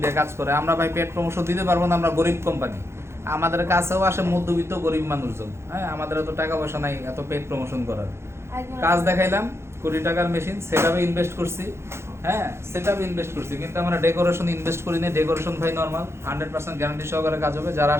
দিয়ে কাজ করে। আমরা ভাই পেড প্রমোশন দিতে পারবো না, আমরা গরিব কোম্পানি। আমাদের কাছেও আসে মধ্যবিত্ত গরিব মানুষজন। হ্যাঁ, আমাদের এত টাকা পয়সা নাই এত পেড প্রমোশন করার। কাজ দেখাইলাম, কোটি টাকার মেশিন সেটআপে ইনভেস্ট করছি। হ্যাঁ, সেটআপে ইনভেস্ট করছি, কিন্তু আমরা ডেকোরেশন ইনভেস্ট করি না। ডেকোরেশন ভাই নর্মাল 100% গ্যারান্টি সহকারে কাজ হবে। যারা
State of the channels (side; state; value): left; late; 0.13 ms